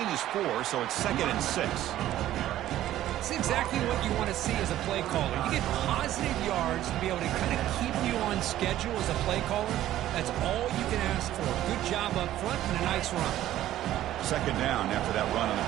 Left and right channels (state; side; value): quieter; left; 13.4 dB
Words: is 4, so it's 2nd and 6. It's exactly what you want to see as a play caller. You get positive yards to be able to kind of keep you on schedule as a play caller. That's all you can ask for. Good job up front and a nice run. Second down after that run on the